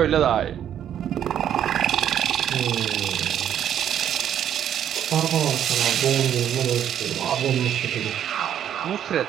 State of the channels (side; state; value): left; quieter; 10.0 dB